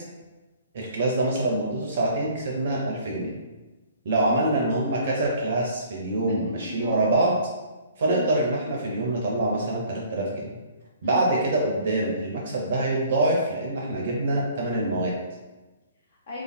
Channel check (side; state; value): both; inverted; correlation -0.55